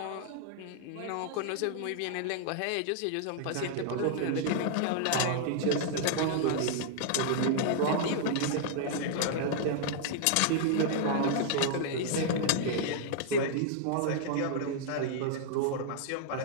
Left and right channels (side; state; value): both; different; correlation -0.01